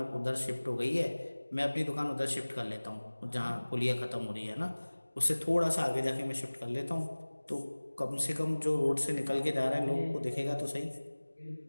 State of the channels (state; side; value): inverted; both; correlation -1.00